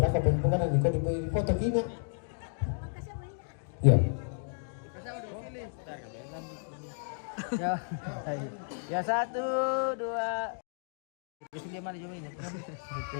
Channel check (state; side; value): silent; right; digital silence